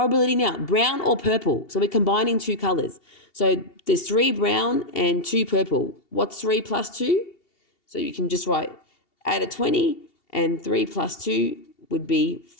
now, brown or purple. So we're combining 2 colors. So there's 3 brown and 2 purple. What's 3 plus 2? So you can just write out of 20, and 3 plus 2 would be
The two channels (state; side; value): late; right; 2.7 ms